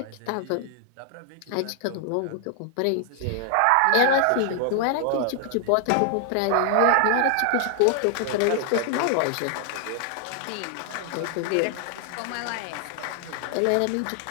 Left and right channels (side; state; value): both; different; correlation 0.00